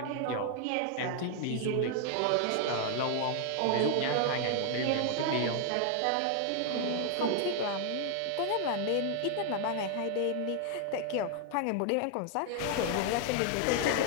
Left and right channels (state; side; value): different; both; correlation 0.00